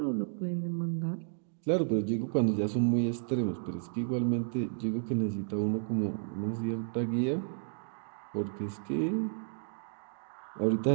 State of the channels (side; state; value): left; silent; digital silence